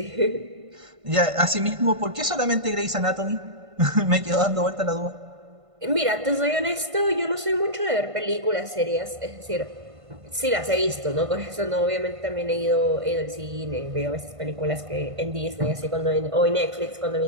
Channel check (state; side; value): late; left; 1.5 ms